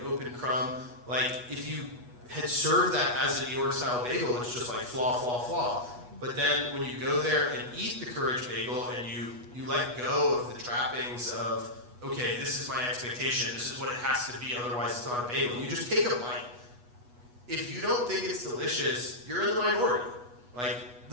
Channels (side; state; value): left; late; 8.2 ms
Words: open crumb. If you had served that as a New York style bagel, it's just flaw, flaw, flaw. But then when you go there and eat the Courage Bagel and you let go of the trappings of, okay, this is my expectation, this is what it has to be, otherwise it's not a bagel. You just take a bite. If you don't think it's delicious, you're in the minority.